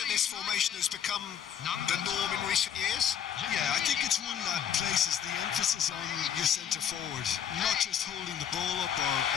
this formation has become the norm in recent years? Yeah, I think it's one that places the emphasis on your centre forward, not just holding the ball up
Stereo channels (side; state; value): right; quieter; 8.9 dB